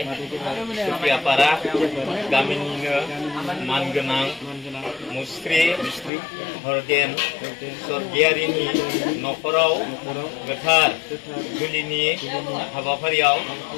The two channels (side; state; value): right; drops out; at 6.1 s